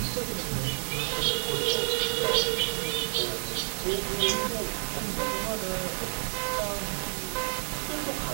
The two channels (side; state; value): left; silent; digital silence